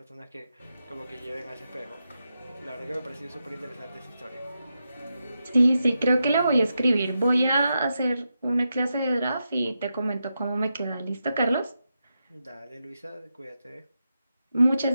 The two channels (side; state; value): both; inverted; correlation -0.87